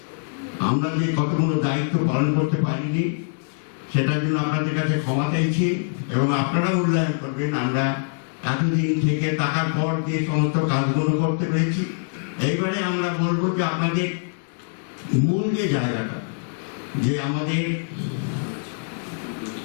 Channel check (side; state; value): right; silent; digital silence